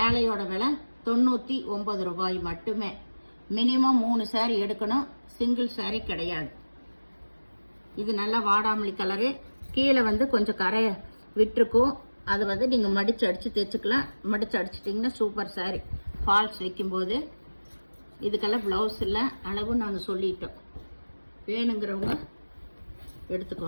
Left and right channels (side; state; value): both; inverted; correlation -1.00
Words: விலை 99 ரூபாய் மட்டுமே. மினிமம் 3 சாரி எடுக்கணும். சிங்கிள் சாரி கிடையாது. இது நல்லா வாடாமல்லி கலரு. கீழே வந்து கொஞ்சம் கரை விட்டுருக்கும். அது வந்து நீங்கள் மடித்து அடித்து தைச்சிக்கலாம். மடித்து அடிச்சிட்டிங்கன்னா சூப்பர் சாரி. ஃபால்ஸ் வைக்கும்போது இதுக்கெல்லாம் ப்ளவுஸ் இல்லை, அளவும் நாங்கள் சொல்லிட்டோம். வேணுங்கிறவங்க